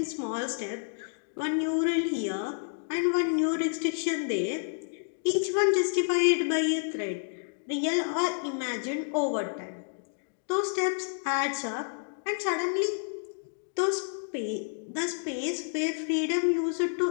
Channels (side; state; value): right; silent; digital silence